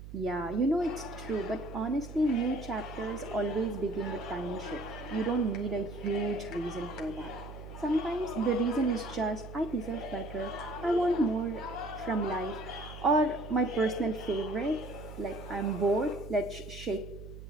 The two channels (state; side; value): noise; right; hum, 12 dB below the sound